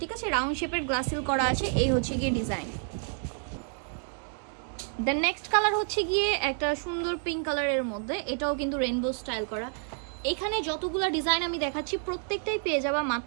ঠিক আছে, রাউন্ড শেপের গ্লাস হিল করা আছে। এই হচ্ছে গিয়ে ডিজাইন। দ্য নেক্সট কালার হচ্ছে গিয়ে একটা সুন্দর পিঙ্ক কালারের মধ্যে, এটাও কিন্তু রেইনবো স্টাইল করা। এখানে যতগুলো ডিজাইন আমি দেখাচ্ছি প্রত্যেকটাই পেয়ে যাবা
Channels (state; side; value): silent; left; 57 dB below the other